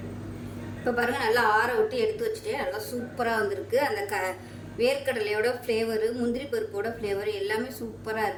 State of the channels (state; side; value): identical; both; correlation 1.00